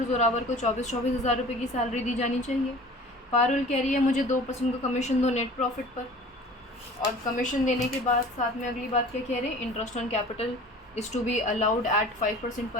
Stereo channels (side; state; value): both; normal; correlation 0.44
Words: जोरावर को 24,000 रुपये की सैलरी दी जानी चाहिए। पारुल कह रही है मुझे 2% का कमीशन दो नेट प्रॉफिट पर, और कमीशन देने के बाद साथ में अगली बात क्या कह रहे हैं, interest on capital is to be allowed at 5%